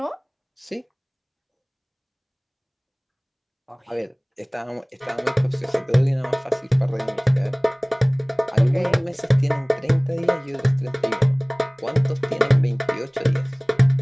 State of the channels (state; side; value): identical; both; correlation 1.00